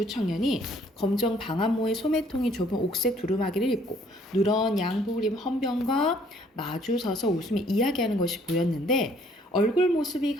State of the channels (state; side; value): normal; both; correlation 0.62